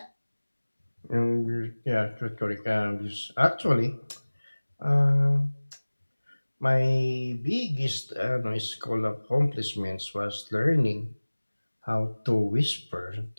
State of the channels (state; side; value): inverted; both; correlation -1.00